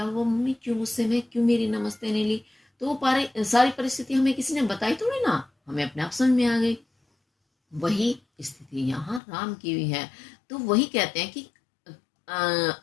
हुआ, मम्मी क्यों गुस्से में, क्यों मेरी नमस्ते नहीं ली, तो वो सारी परिस्थिति हमें किसी ने बताई थोड़ी ना, हमें अपने आप समझ में आ गई। वही स्थिति यहाँ राम की भी है। तो वही कहते हैं कि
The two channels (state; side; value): drops out; right; at 9.2 s